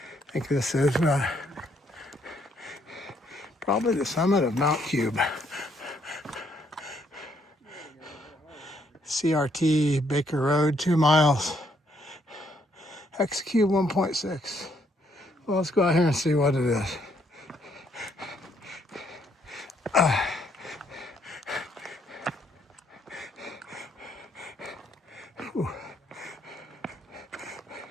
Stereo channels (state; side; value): normal; both; correlation 0.71